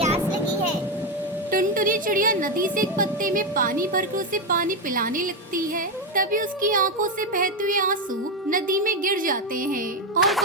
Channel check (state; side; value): normal; both; correlation 0.08